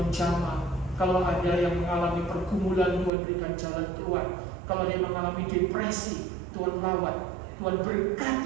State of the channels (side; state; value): left; drops out; at 3.1 s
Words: jamah, kalau ada yang mengalami pergumulan Tuhan berikan jalan keluar, kalau ada yang mengalami depresi Tuhan lawat, Tuhan